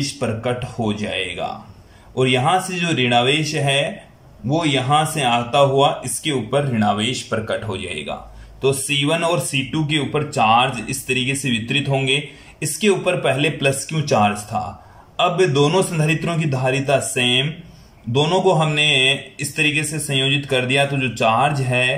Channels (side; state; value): both; identical; correlation 1.00